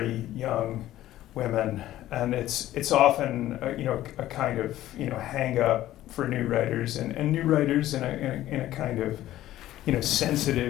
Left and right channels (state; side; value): quieter; right; 14.1 dB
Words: young women. And it's often a kind of hang up for new writers and new writers in a kind of